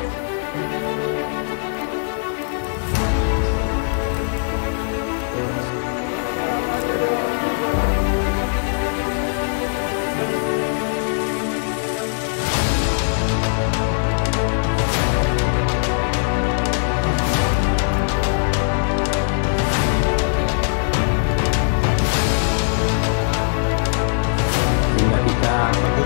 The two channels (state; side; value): silent; right; 65 dB below the other